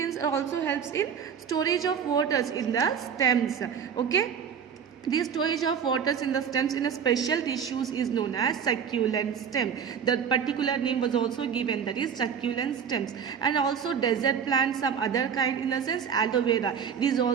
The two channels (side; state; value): left; quieter; 7.4 dB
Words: also helps in storage of waters in the stems, okay. The storage of waters in the stems in a special tissues is known as succulent stem. The particular name was also given, that is succulent stems. And also desert plants, some other kind, in the sense aloe vera. It is